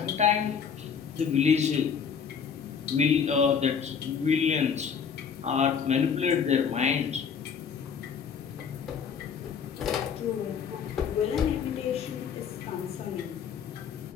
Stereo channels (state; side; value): quieter; right; 6.8 dB